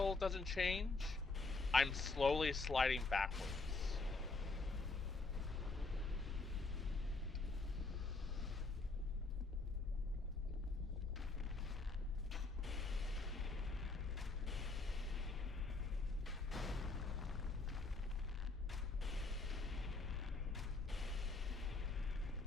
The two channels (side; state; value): right; quieter; 3.6 dB